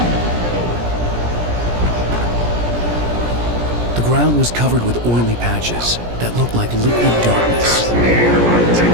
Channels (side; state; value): left; late; 17 ms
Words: The ground was covered with oily patches that looked like liquid darkness.